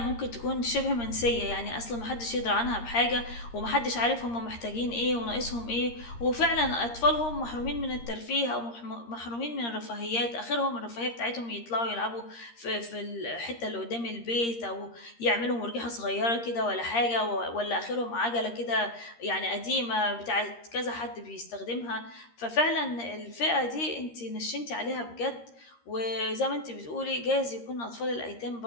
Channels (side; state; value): right; late; 13 ms